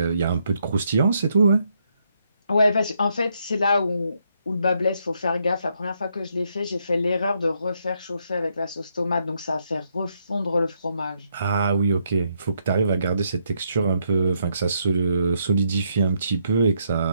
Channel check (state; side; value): inverted; both; correlation -0.75